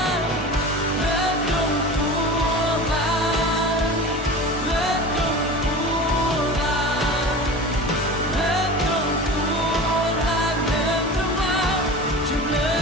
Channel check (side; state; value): both; normal; correlation 0.34